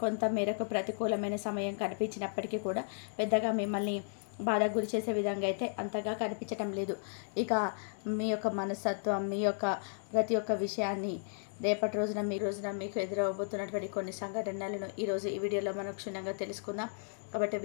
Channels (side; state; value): right; silent; digital silence